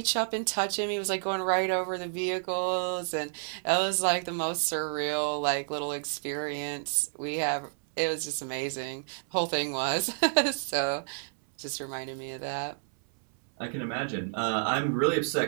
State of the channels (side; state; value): left; silent; 58 dB below the other